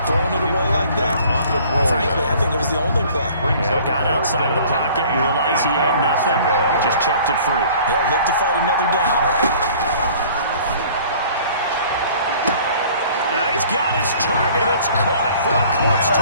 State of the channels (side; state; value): both; inverted; correlation -0.51